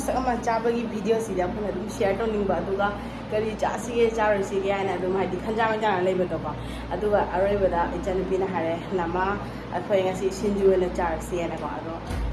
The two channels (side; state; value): both; identical; correlation 1.00